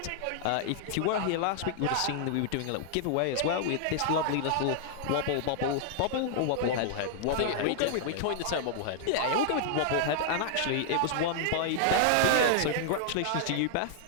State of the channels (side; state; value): both; different; correlation -0.01